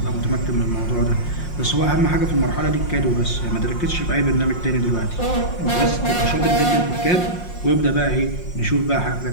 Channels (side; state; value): right; late; 5.6 ms